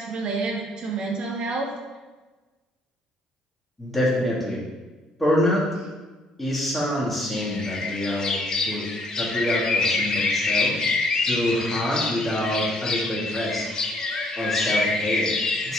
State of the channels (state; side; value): normal; both; correlation 0.65